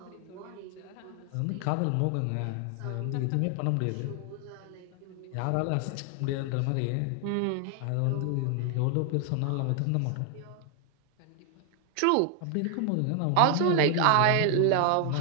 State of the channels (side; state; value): both; different; correlation 0.00